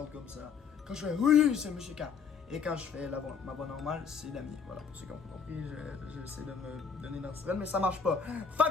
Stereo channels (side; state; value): right; quieter; 6.1 dB